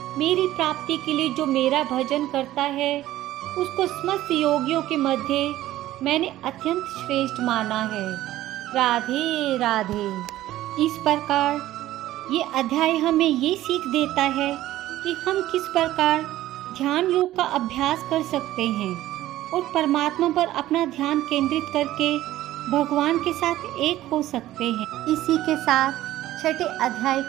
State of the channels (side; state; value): left; quieter; 14.7 dB